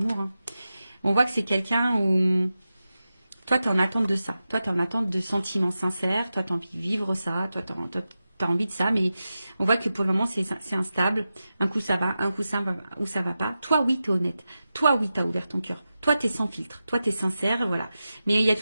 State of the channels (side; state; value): both; inverted; correlation -0.92